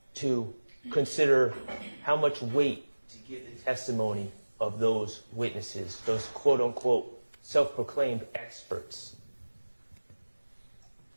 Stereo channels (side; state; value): both; inverted; correlation -1.00